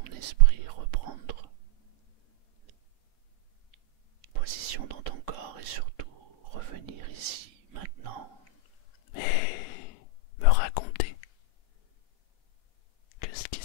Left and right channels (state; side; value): late; right; 3.7 ms